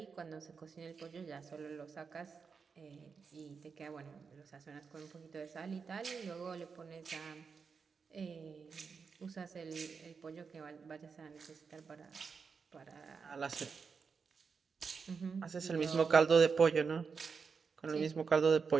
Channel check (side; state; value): left; quieter; 5.5 dB